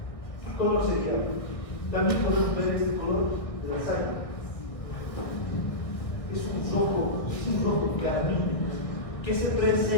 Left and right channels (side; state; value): right; late; 1.6 ms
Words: ¿qué color sería? También podemos ver este color de la sangre. Es un rojo carmín que se